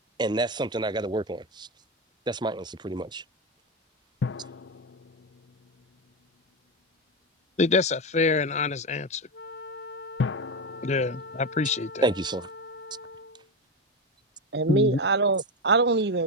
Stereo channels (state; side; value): normal; both; correlation 0.14